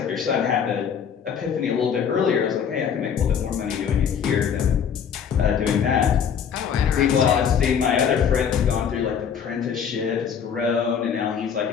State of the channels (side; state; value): right; quieter; 7.5 dB